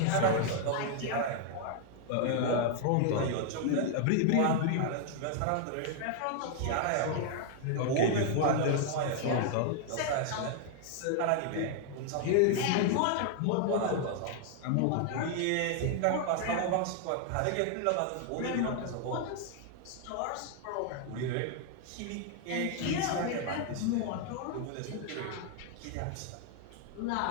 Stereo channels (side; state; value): both; different; correlation 0.00